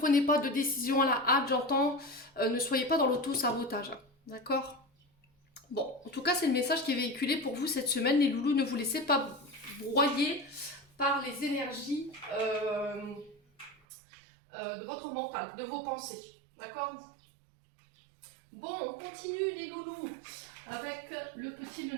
pas de décision à la hâte, j'entends. Ne soyez pas dans l'auto-sabotage. D'accord? Bon, en tout cas, c'est le message qui est véhiculé pour vous cette semaine. Les loulous, ne vous laissez pas broyer par les énergies de votre mental, de vos pensées. D'accord? Bon, on continue les loulous avec le petit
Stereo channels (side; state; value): left; drops out; at 13.8 s